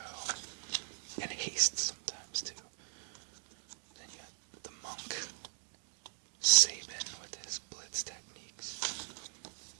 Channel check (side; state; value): left; silent; digital silence